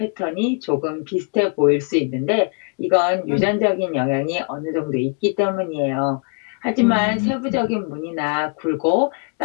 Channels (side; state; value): right; quieter; 38.0 dB